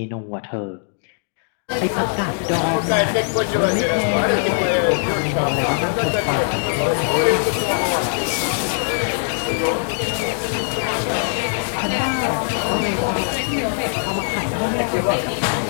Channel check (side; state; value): right; silent; digital silence